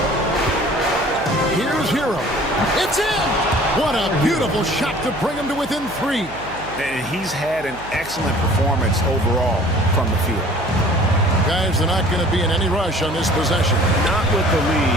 Here's Hero. It's in! What a beautiful shot to bring him to within 3. And he's had an excellent performance overall from the field. Guys, they're not going to be in any rush on this possession. Not with the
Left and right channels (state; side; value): noise; right; hum, 17 dB below the sound